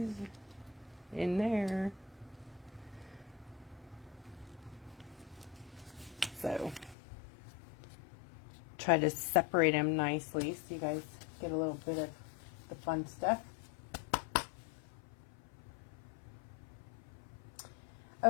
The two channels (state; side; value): drops out; right; at 7.0 s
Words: in there. So try to separate them nicely so you guys get a little bit of the fun stuff.